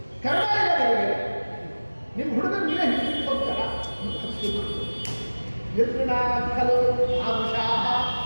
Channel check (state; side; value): inverted; both; correlation -1.00